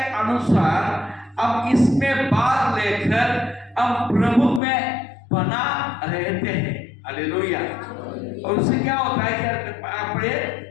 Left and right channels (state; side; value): drops out; right; at 4.6 s